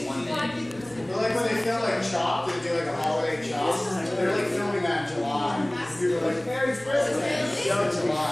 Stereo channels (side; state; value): right; noise; rumble, 26 dB below the sound